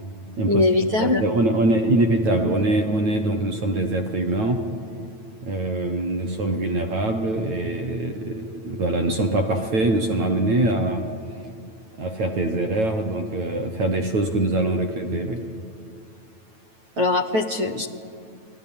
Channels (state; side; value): late; left; 9.1 ms